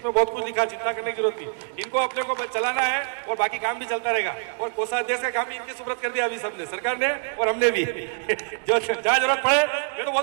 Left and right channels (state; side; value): silent; left; digital silence